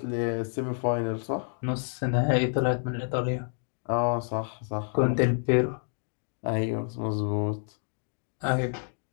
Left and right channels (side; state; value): right; silent; digital silence